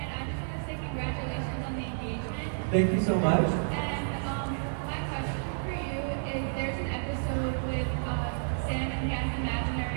I just want to say congratulations on the engagement. Thank you so much. And my question for you is, there's an episode with Sam and he has an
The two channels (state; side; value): silent; left; 57 dB below the other